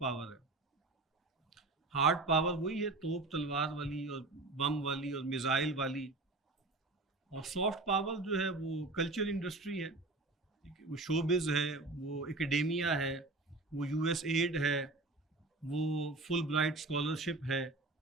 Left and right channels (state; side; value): quieter; left; 3.2 dB